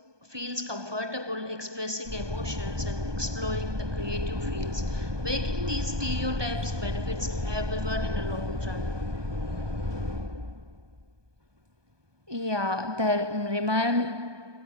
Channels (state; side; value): late; left; 1.2 ms